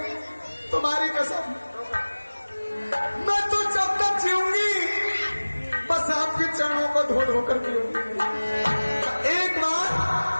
तुम्हारी कसम, मैं तो जब तक जीऊंगी बस आपके चरणों को धो धो कर पीऊंगी। एक बार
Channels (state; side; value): inverted; both; correlation -1.00